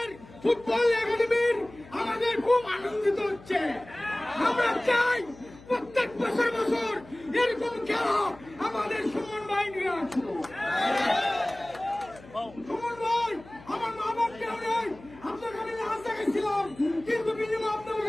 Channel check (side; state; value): left; noise; hum, 21 dB below the sound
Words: ফুটবল একাডেমির আমাদের খুব আনন্দিত হচ্ছে। আমরা চাই প্রত্যেক বছর বছর এরকম খেলা আমাদের সুমন ভাই নিয়ে আসবো। সুমন ভাই, আমার মা বাপ কেউ নেই। আপনার কাছে রাস্তা গেছিলাম, কিন্তু বিনিময় আপনি